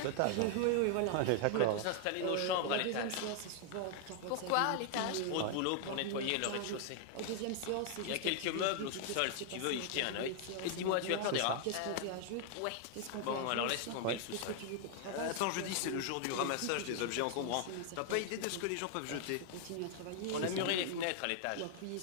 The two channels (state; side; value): different; both; correlation 0.00